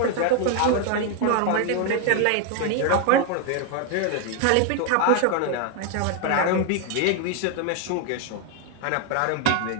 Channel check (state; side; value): different; both; correlation 0.01